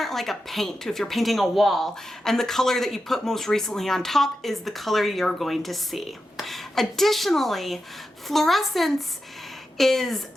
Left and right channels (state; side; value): normal; both; correlation 0.90